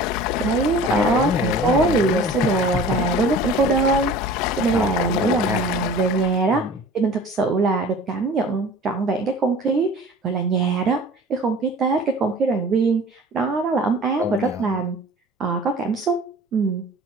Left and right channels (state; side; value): normal; both; correlation 0.43